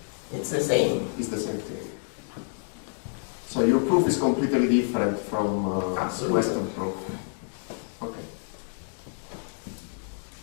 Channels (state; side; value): silent; right; 59 dB below the other